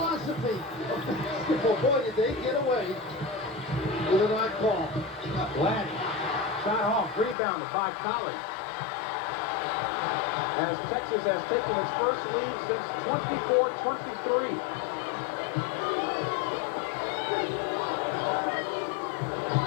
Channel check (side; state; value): right; drops out; at 7.4 s